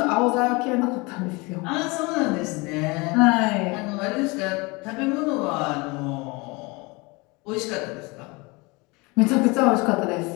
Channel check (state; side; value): quieter; right; 26.1 dB